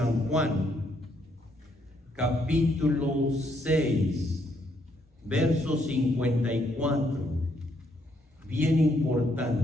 Juan, capítulo 6, verso 54, bien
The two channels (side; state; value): both; normal; correlation 0.72